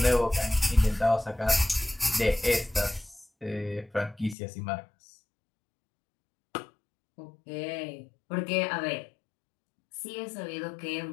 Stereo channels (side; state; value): right; drops out; at 4.4 s